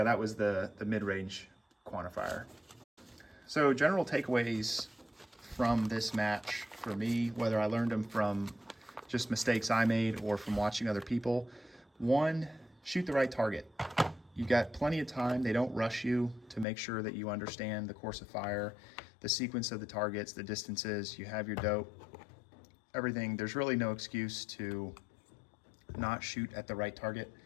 that was the mid-range quantifier. So general takeaways from this match for me, whether I learned them from just mistakes I made or from watching other people. 1, shoot the right target. You've got plenty of time. They don't rush you to make sure that you understand the course of fire, the sequence of the targets, the distances, you have your dope, everything. There's really no excuse to not shoot at the right target.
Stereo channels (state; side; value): drops out; right; at 16.7 s